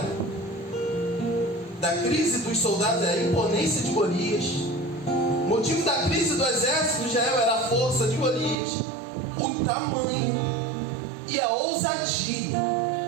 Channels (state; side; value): drops out; left; at 8.6 s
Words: da crise dos soldados era a imponência de Golias. O motivo da crise do exército de Israel era a força de Golias, o tamanho e a ousadia.